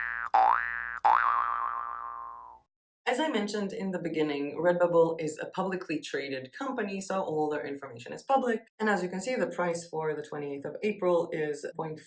As I mentioned in the beginning, RedBubble is a publicly traded company, so all their information is public. And as you can see, the price for the 28th of April is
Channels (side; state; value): both; identical; correlation 1.00